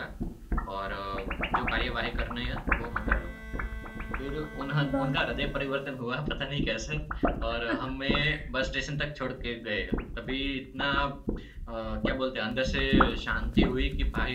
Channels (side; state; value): both; identical; correlation 1.00